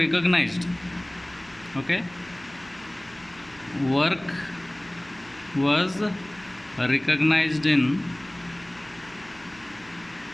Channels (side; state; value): right; noise; hum, 25 dB below the sound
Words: Okay, work was recognized in